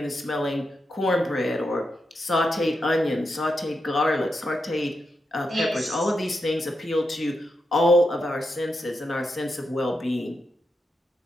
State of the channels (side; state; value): both; normal; correlation 0.86